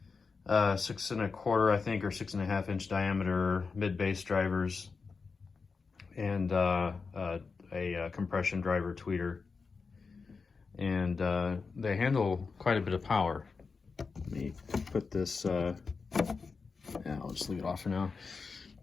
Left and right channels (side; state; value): right; quieter; 4.8 dB